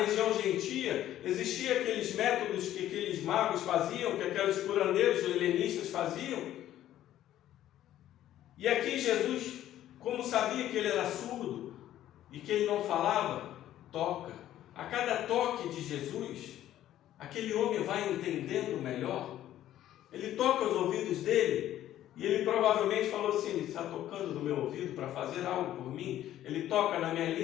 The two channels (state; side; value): quieter; right; 12.6 dB